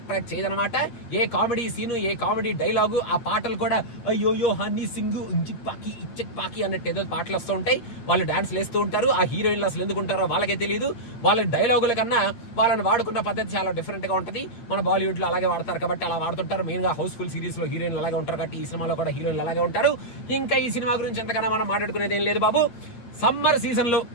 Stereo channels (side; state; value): right; late; 8.6 ms